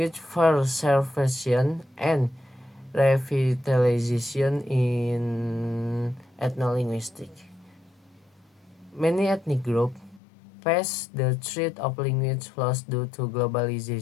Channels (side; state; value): right; drops out; at 10.2 s